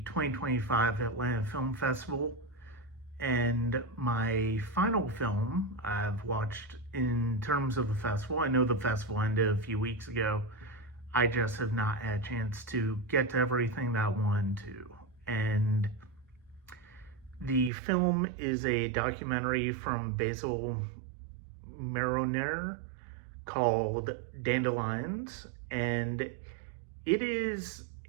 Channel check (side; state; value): left; drops out; at 17.7 s